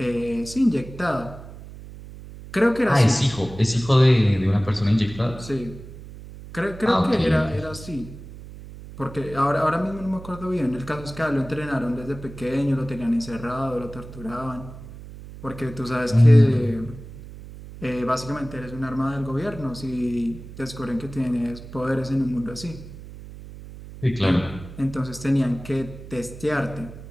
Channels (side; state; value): right; noise; hum, 15 dB below the sound